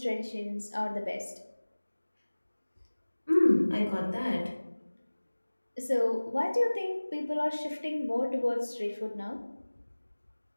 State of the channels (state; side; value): inverted; both; correlation -1.00